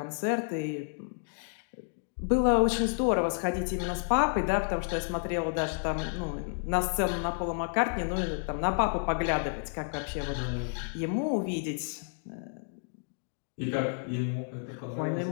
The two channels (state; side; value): silent; right; digital silence